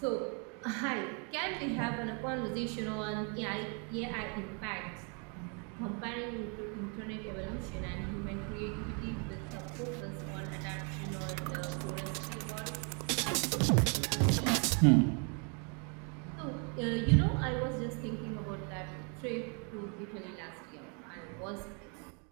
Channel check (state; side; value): quieter; left; 36.7 dB